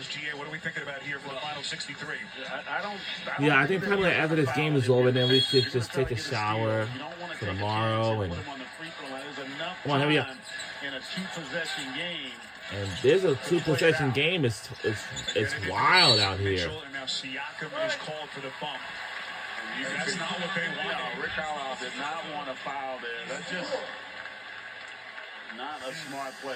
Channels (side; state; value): both; identical; correlation 1.00